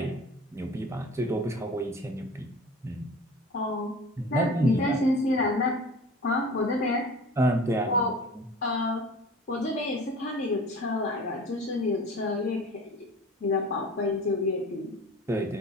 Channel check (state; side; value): normal; both; correlation 0.40